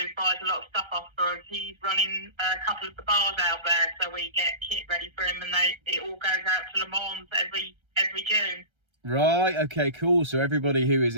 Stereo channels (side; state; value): left; late; 1.3 ms